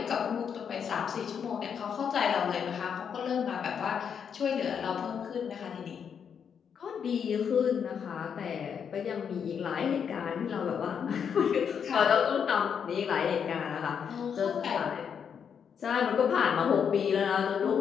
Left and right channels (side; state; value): right; quieter; 7.3 dB